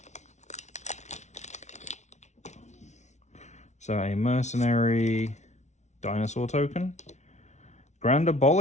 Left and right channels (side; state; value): right; late; 0.33 ms